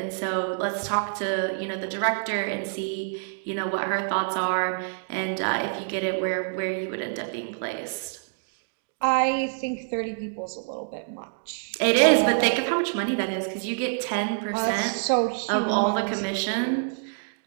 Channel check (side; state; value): left; silent; digital silence